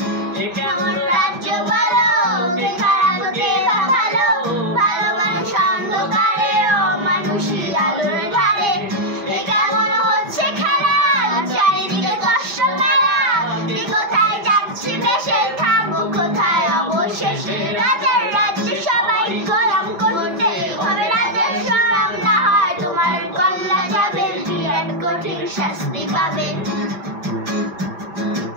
কেমন রাজ্য বলো, কে খারাপ কে ভালো, ভালো মানুষ অন্ধকারে ও মানুষই আলোর ধারে। কেমন হচ্ছে খেলা, চারিদিকে কষ্ট মেলা, কে কোথায় যাচ্ছি দেশে, থাকবো কোথায় অবশেষে। রাজার রাজ্যে সবাই গোলাম করতে হবে রাজার শোনাম, না হয় তোমার গলা যাবে, বিরাট কঠিন শাস্তি পাবে।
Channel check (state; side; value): late; left; 6.0 ms